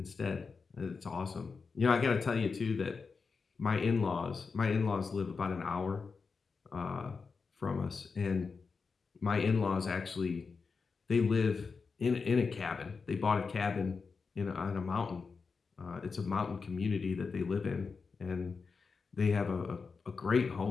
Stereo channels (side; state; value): right; quieter; 4.9 dB